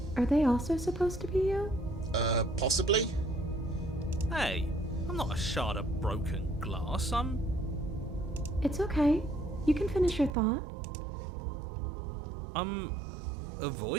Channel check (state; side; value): drops out; left; at 10.3 s